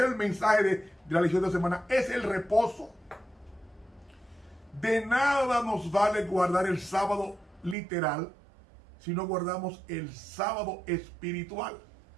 es el mensaje de la lección de semana. Es el reposo. De nada nos vale guardar el sábado literal si no guardamos el sábado espiritual.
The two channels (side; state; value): left; drops out; at 7.8 s